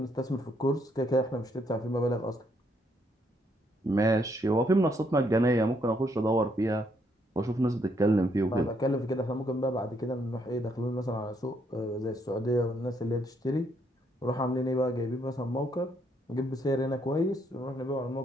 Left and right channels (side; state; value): both; normal; correlation 0.72